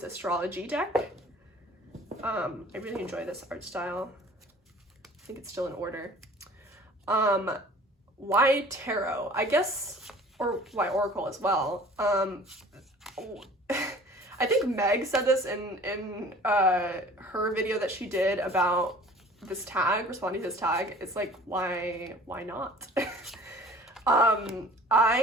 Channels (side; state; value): both; normal; correlation 0.47